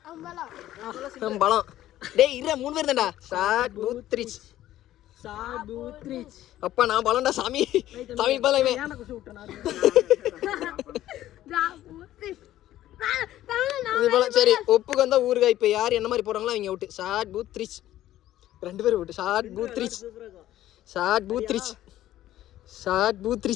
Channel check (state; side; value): quieter; right; 13.6 dB